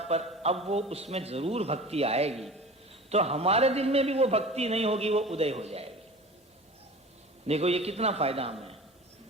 पर अब वो उसमें जरूर भक्ति आएगी, तो हमारे दिल में भी वो भक्ति नहीं होगी, वो उदय हो जाएगी। देखो ये कितना फायदा हमें।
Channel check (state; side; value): normal; both; correlation 0.38